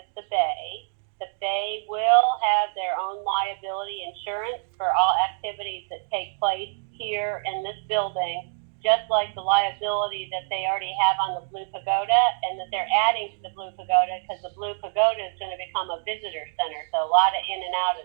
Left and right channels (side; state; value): left; silent; digital silence